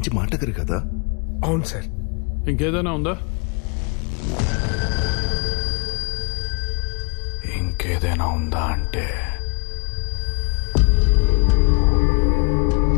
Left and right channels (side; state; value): right; quieter; 33.8 dB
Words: మాటగారు కదా? అవును సార్. ఇంకేదైనా ఉందా? ఇంకేదైనా ఉందా అంటే